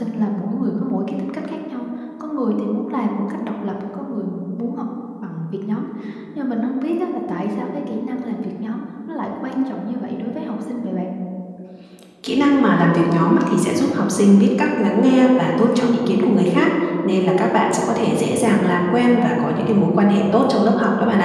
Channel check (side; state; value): both; identical; correlation 1.00